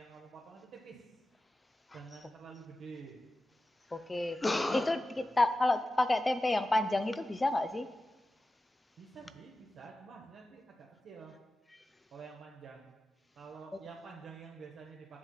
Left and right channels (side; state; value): both; normal; correlation 0.94